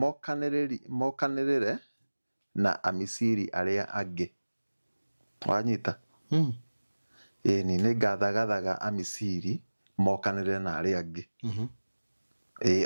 mokanĩrĩre na Amisiri arĩa angĩ wanyita ĩni nĩ ngathagathaga Amisiri mokanĩrĩre na arĩa angĩ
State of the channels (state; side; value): inverted; both; correlation -1.00